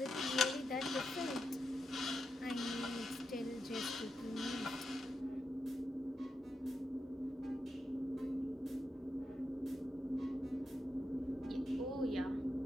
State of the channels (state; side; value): normal; both; correlation 0.86